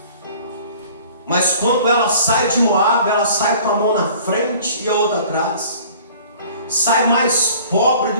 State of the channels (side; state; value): both; inverted; correlation -0.49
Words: Mas quando ela sai de Moabe, ela sai com a mão na frente e a outra atrás. Sai mais pobre